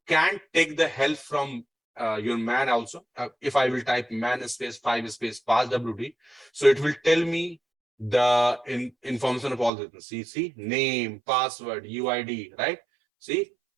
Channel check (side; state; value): left; drops out; at 9.7 s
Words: can take the help from your man also. If I will type man space 5 space pass WD, so it will tell me the information of all this. See, name, password, UID, right? See,